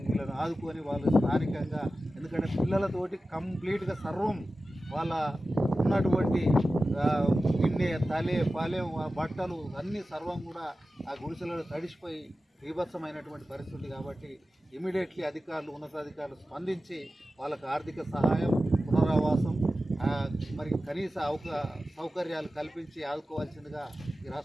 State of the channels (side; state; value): both; normal; correlation 0.94